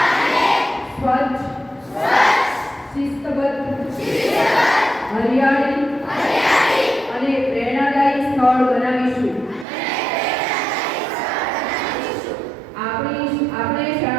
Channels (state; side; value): drops out; left; at 9.7 s